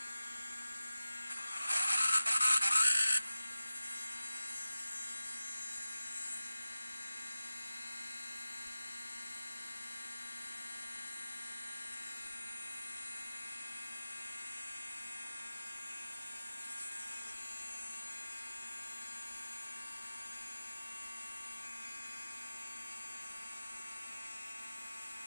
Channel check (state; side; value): inverted; both; correlation -0.95